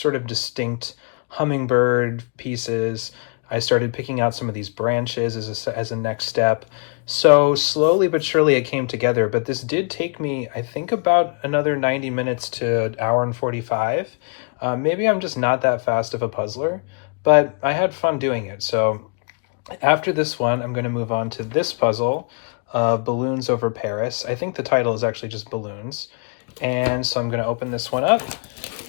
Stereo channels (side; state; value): right; quieter; 37.9 dB